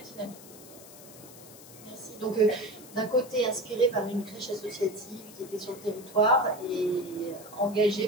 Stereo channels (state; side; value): noise; left; hiss, 18 dB below the sound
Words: dynamique. Merci. Donc, d'un côté, inspiré par une crèche associative qui était sur le territoire et